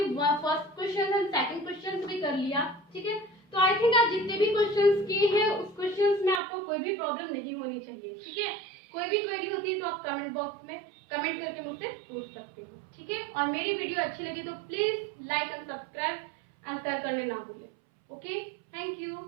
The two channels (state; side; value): drops out; left; at 6.4 s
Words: first question and second question भी कर लिया, ठीक है। तो आई थिंक आप जितने भी क्वेश्चंस किए हैं उस क्वेश्चंस में आपको कोई भी प्रॉब्लम नहीं होनी चाहिए, ठीक है। कोई भी क्वेरी होती है तो आप कमेंट बॉक्स में कमेंट करके मुझसे पूछ सकते हो, ठीक है। और मेरी वीडियो अच्छी लगी तो please like and subscribe and share करने ना भूलें। Okay, thank you.